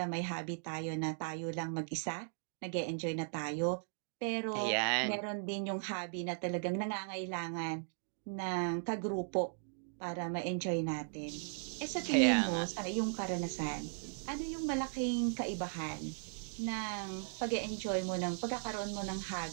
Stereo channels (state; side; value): silent; left; digital silence